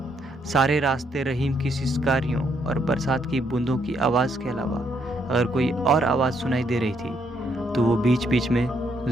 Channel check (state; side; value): normal; both; correlation 0.73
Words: सारे रास्ते रहीम की सिसकारियों और बरसात की बूंदों की आवाज़ के अलावा अगर कोई और आवाज़ सुनाई दे रही थी तो वो बीच बीच में